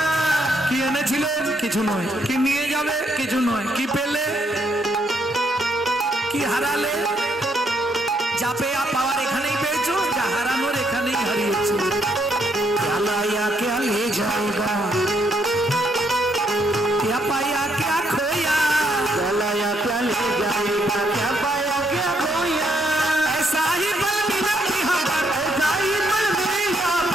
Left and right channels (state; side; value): normal; both; correlation 0.74